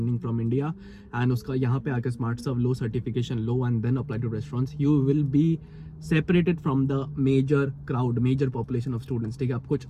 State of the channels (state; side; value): identical; both; correlation 1.00